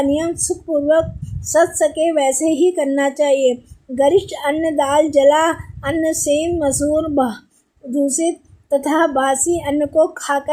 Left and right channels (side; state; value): both; identical; correlation 1.00